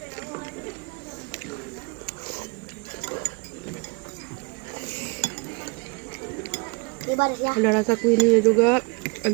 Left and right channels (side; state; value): left; quieter; 29.7 dB